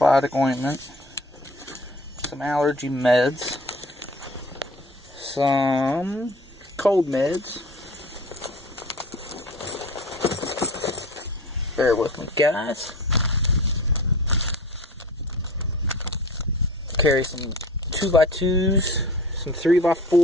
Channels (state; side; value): normal; both; correlation 0.40